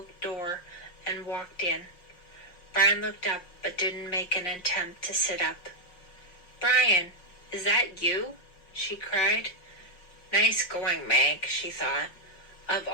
door and walked in. Brian looked up but didn't make an attempt to sit up. "Brian, is that you?" she cried. Nice going, Meg, she thought. Of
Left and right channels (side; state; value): right; late; 5.5 ms